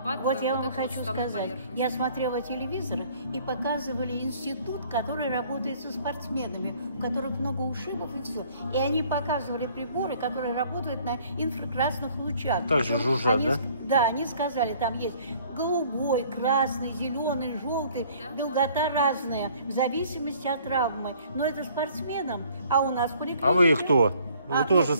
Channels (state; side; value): inverted; both; correlation -0.57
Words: Вот я вам хочу сказать, я смотрела телевизор, и показывали институт, который работает со спортсменами, у которых много ушибов и все. И они показывали приборы, которые работают на инфракрасных лучах. Также жужжат, да? Да, они сказали, там есть голубой, красный, зеленый, желтый, долгота разная, в зависимости от травмы. Но это спортсменам, а у нас в поликлинике... А вы кто? Вы тоже